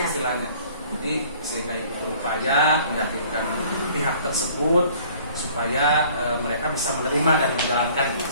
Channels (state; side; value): inverted; both; correlation -0.54